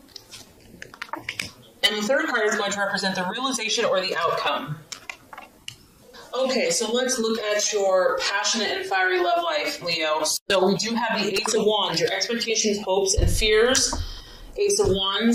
And the third card is going to represent the realization or the outcome. Okay, so let's look at your passionate and fiery love life, Leo. So we do have the Ace of Wands, your expectations, hopes, and fears. Ace of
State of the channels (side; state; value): both; identical; correlation 1.00